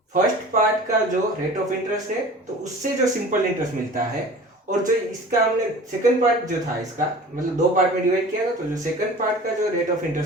फर्स्ट पार्ट का जो रेट ऑफ इंटरेस्ट है तो उससे जो सिंपल इंटरेस्ट मिलता है, और जो इसका हमने सेकंड पार्ट जो था इसका, मतलब दो पार्ट में डिवाइड किया था, तो जो सेकंड पार्ट का जो रेट ऑफ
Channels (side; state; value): both; normal; correlation 0.42